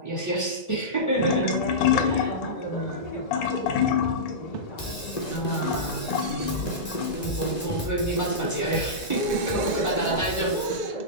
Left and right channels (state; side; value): late; right; 1.9 ms